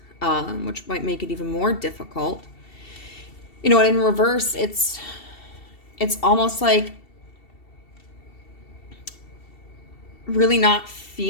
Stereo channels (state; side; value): late; right; 2.7 ms